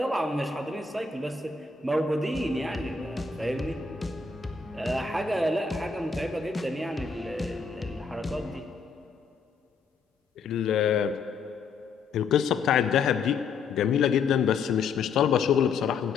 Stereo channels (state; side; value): quieter; right; 5.0 dB